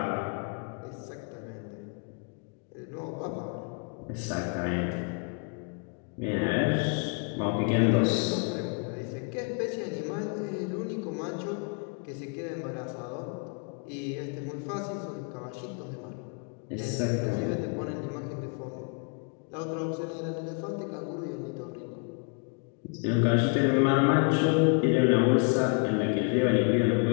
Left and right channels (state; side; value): quieter; right; 37.4 dB